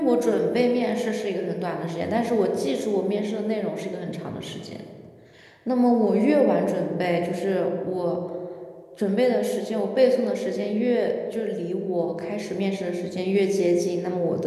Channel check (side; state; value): both; identical; correlation 1.00